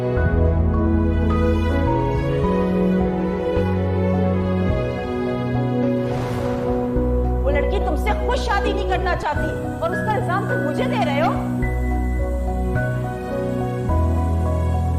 वो लड़की तुमसे खुद शादी नहीं करना चाहती और उसका इल्जाम तुम मुझे दे रहे हो।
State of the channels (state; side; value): identical; both; correlation 1.00